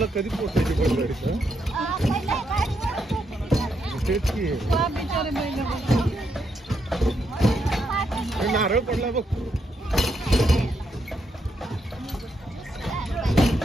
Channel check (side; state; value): both; normal; correlation 0.79